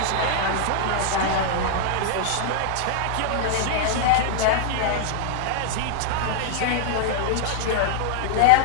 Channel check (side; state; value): both; different; correlation -0.01